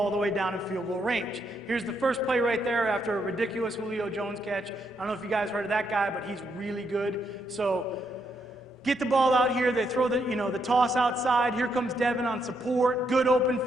all the way down in field goal range. Here's the first play right there after a ridiculous Julio Jones catch. I don't know if you guys heard of that guy, but he's really good. So get the ball out here. They throw the toss outside. Here comes Devin on support. Good open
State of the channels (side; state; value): both; normal; correlation 0.77